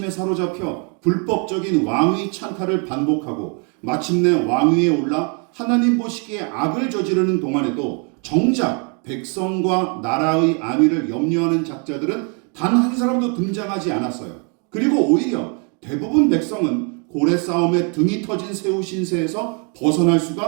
사로잡혀 불법적인 왕위 찬탈을 반복하고 마침내 왕위에 올라 하나님 보시기에 악을 저지르는 동안에도 정작 백성과 나라의 안위를 염려하는 작자들은 단 한 사람도 등장하지 않았어요. 그리고 오히려 대부분 백성은 고래 싸움에 등이 터진 새우 신세에서 벗어날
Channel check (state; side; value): quieter; left; 37.1 dB